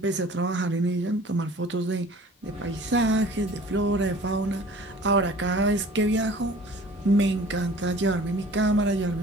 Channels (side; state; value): both; normal; correlation 0.47